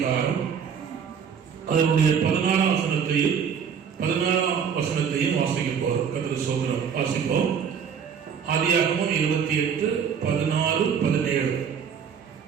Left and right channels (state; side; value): quieter; left; 7.3 dB